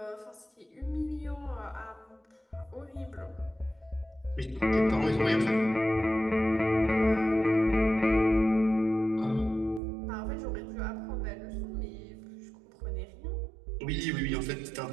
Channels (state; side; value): drops out; left; at 9.8 s